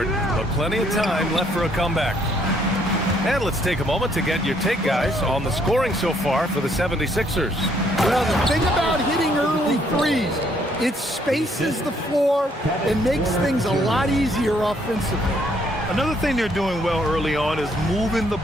but plenty of time left for a comeback. And let's take a moment to get your take, guys, on the scoring so far for the 76ers. Well, the thing about hitting early threes, it spaces the floor and makes things a lot easier offensively. Another thing they're doing well early on is moving the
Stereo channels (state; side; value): normal; both; correlation 0.68